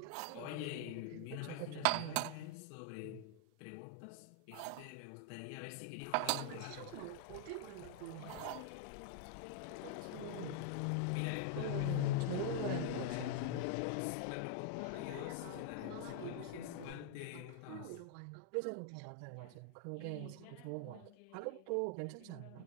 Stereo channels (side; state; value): both; different; correlation 0.00